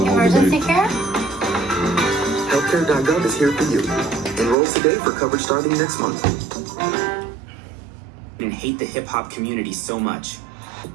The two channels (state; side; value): drops out; left; at 4.5 s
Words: whole Emergency debate. care? Healthcare.gov is here for you. Enroll today for coverage starting next month. And hate the hip-hop community so much.